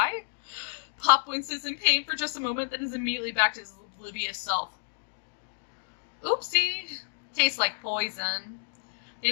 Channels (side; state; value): right; silent; digital silence